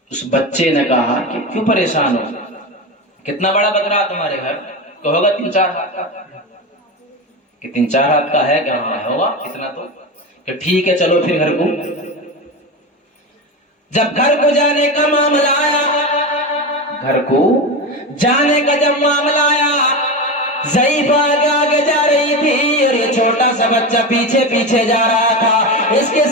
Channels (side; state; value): both; normal; correlation 0.21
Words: اس بچے نے کہا کہ کیوں پریشان ہو، کتنا بڑا بکرا تمہارے گھر؟ تو ہوگا 3-4 ہاتھ کا، کہ 3-4 ہاتھ کا ہے کہ ہاں ہوگا اتنا تو، کہ ٹھیک ہے چلو پھر گھر کو۔ جب گھر کو جانے کا معاملہ آیا، گھر کو جانے کا جب معاملہ آیا، ضعیفہ آگے آگے جا رہی تھی اور یہ چھوٹا سا بچہ پیچھے پیچھے جا رہا تھا، اس کے